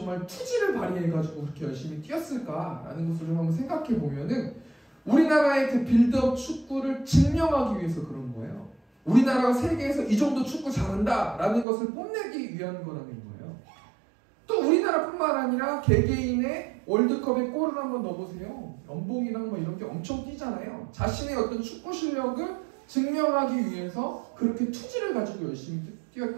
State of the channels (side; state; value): left; drops out; at 11.7 s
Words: 투지를 발휘해가지고 그렇게 열심히 뛰었을까라는 것을 좀 한번 생각해 보면은 우리나라의 그 빌드업 축구를 증명하기 위해서 그런 거예요. 우리나라가 세계에서 이 정도 축구 잘한다라는 것을 뽐내기 위한 거라는 거예요. 또 우리나라뿐만 아니라 개개인의 월드컵에 골을 한번 넣어보세요. 연봉이랑 뭐 이런 게 엄청 뛰잖아요. 자신의 어떤 축구 실력을 증명하기 위해서 그렇게 투지를 가지고 열심히